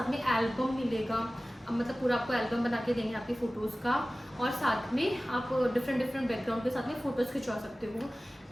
में एल्बम मिलेगा, मतलब पूरा आपको एल्बम बना के देंगे आपकी फ़ोटोज़ का, और साथ में आप डिफरेंट बैकग्राउंड के साथ में फ़ोटोज़ खिंचवा सकते हो।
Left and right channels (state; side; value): normal; both; correlation 0.97